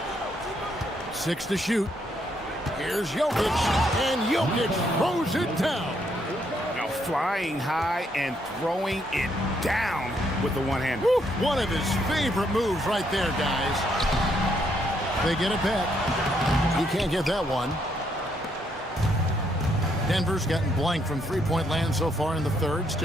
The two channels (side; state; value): both; normal; correlation 0.73